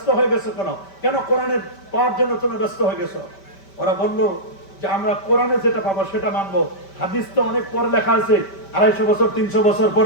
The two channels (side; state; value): right; late; 5.1 ms